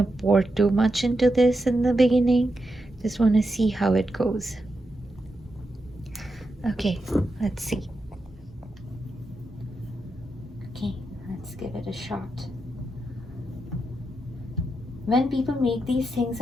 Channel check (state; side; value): normal; both; correlation 0.86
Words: pour too much into this in the beginning. Just want to see how it goes. Okay, let's see. Okay, let's give it a shot. When people make these things